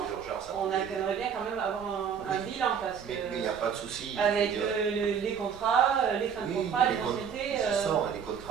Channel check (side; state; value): left; quieter; 7.3 dB